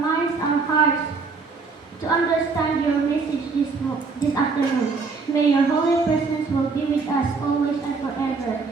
our hearts to understand your message this afternoon. May your holy presence will be with us always and forever.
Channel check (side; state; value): left; quieter; 4.5 dB